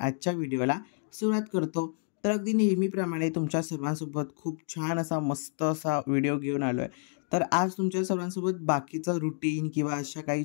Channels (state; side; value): silent; right; 56 dB below the other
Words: आजच्या व्हिडिओला सुरुवात करतो. तर अगदी नेहमीप्रमाणे तुमच्या सर्वांसोबत खूप छान असा मस्त असा व्हिडिओ घेऊन आलो आहे. तर आज तुमच्या सर्वांसोबत बाकीचं रुटीन किंवा अशा काही